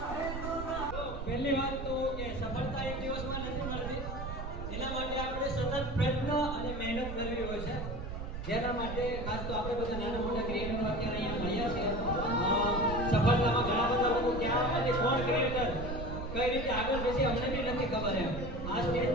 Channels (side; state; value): right; noise; rumble, 6 dB below the sound